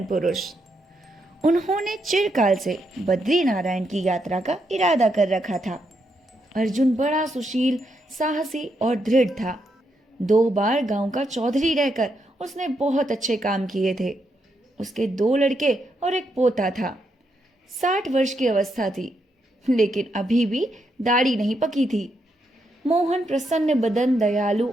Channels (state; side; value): normal; both; correlation 0.80